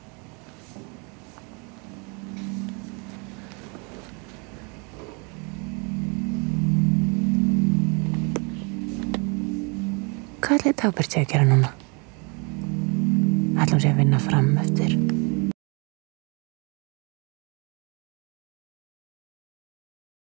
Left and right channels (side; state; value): left; quieter; 32.4 dB